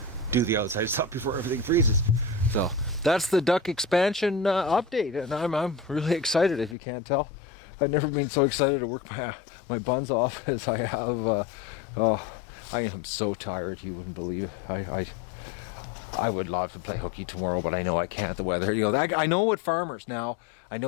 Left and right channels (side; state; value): right; drops out; at 6.8 s